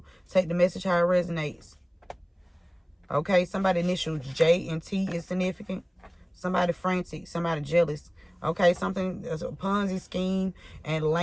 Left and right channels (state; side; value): identical; both; correlation 1.00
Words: Take the message how it resonates. Okay, somebody initial J and T is significant. Somebody frantic, somebody jealous. Okay, something as a Ponzi scheme and